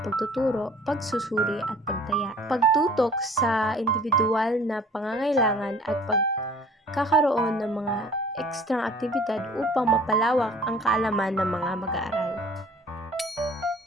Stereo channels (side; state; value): both; normal; correlation 0.50